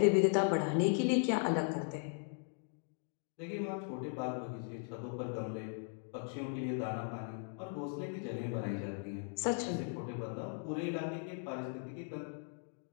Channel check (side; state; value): right; silent; 52 dB below the other